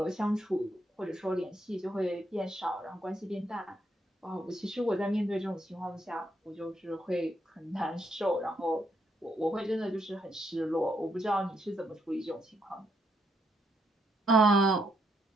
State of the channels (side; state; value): both; normal; correlation 0.77